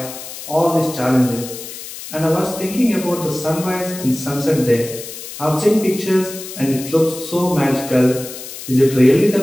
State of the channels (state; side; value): noise; left; hiss, 11 dB below the sound